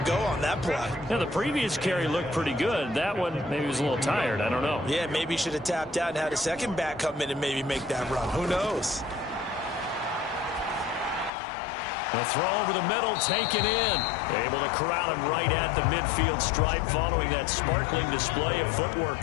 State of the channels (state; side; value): drops out; right; at 11.3 s